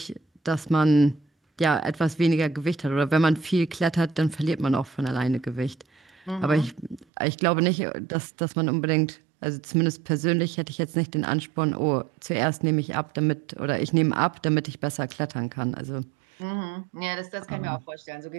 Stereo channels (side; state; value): left; drops out; at 7.1 s